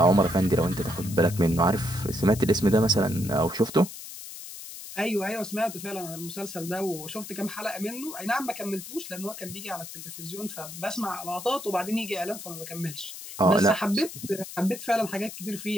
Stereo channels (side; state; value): left; noise; hiss, 12 dB below the sound